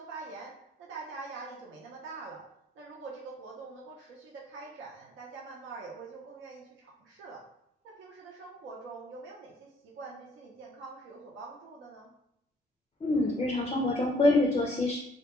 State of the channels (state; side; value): normal; both; correlation 0.64